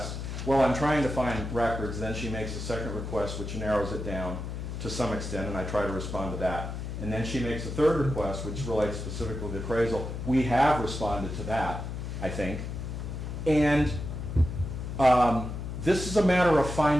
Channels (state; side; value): noise; left; hum, 6 dB below the sound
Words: Well, I'm trying to find records, then she makes a second request, which narrows it down to some extent, and I try to respond to that. And then she makes a third request, which relates specifically to the appraisal. We have responded to that, I think. And this is a matter of